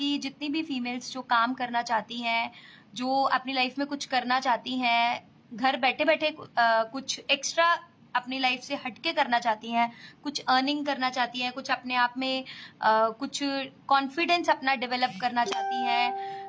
जितनी भी फीमेल्स जो काम करना चाहती हैं, जो अपनी लाइफ में कुछ करना चाहती हैं, घर बैठे बैठे कुछ एक्स्ट्रा अपनी लाइफ से हटके करना चाहती हैं, कुछ अर्निंग करना चाहती हैं, कुछ अपने आप में कुछ कॉन्फिडेंस अपना डेवलप करना चाहती हैं,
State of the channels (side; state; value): both; identical; correlation 1.00